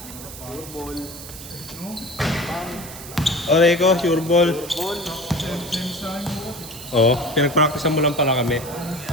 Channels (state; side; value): noise; right; hiss, 13 dB below the sound